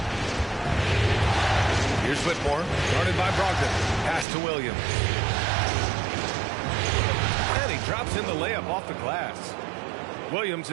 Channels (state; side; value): drops out; left; at 4.2 s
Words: Here's Whitmore, guarded by Brogdon. Pass to Williams. And he drops in the layup off the glass. Williams